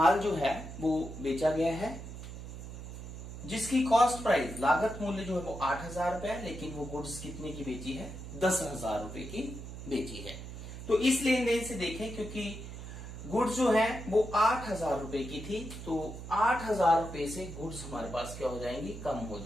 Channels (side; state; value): right; noise; hum, 10 dB below the sound